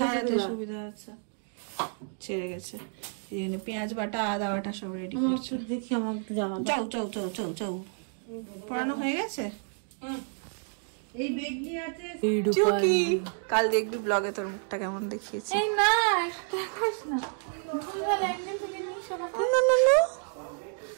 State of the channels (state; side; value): silent; left; 57 dB below the other